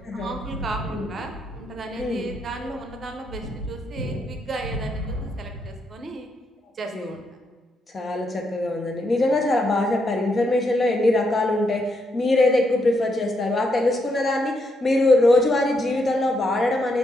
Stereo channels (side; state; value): both; normal; correlation 0.79